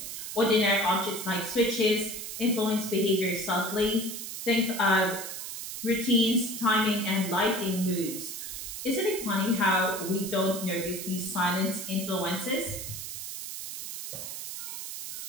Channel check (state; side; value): noise; right; hiss, 7 dB below the sound